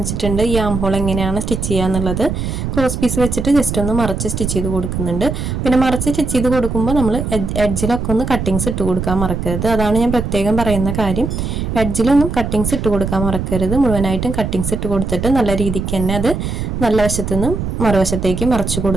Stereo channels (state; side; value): noise; right; rumble, 3 dB below the sound